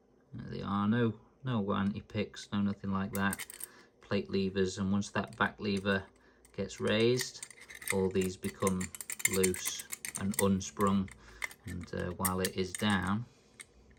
There they are, no anti-picks, no nothing like that. Plate levers, and once that back lever gets raised, all these become loose and unsprung, and while it is down,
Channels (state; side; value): identical; both; correlation 1.00